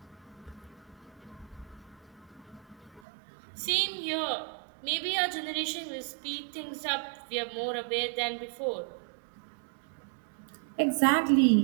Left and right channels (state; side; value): drops out; left; at 3.0 s